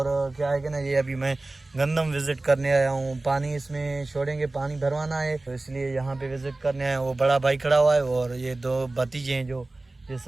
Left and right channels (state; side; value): quieter; left; 3.0 dB